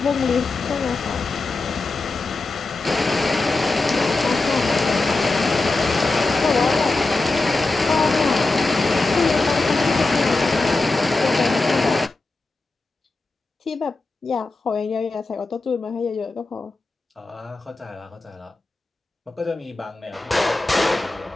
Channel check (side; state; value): right; quieter; 3.3 dB